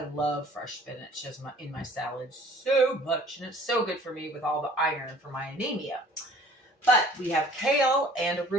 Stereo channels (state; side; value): normal; both; correlation 0.52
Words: love fresh spinach in my salad so much, and it's so good for me with all the iron for my anemia. But we have kale and